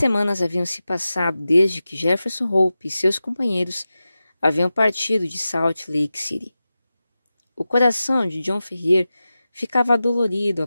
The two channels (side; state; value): both; inverted; correlation -0.93